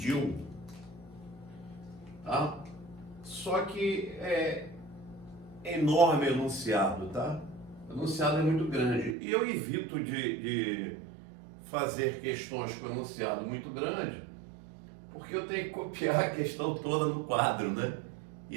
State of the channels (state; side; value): drops out; left; at 9.2 s